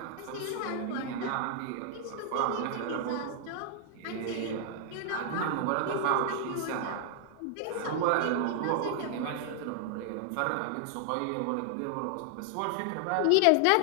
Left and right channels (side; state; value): both; different; correlation 0.00